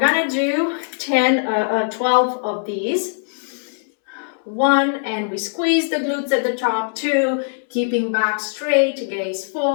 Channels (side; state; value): right; silent; digital silence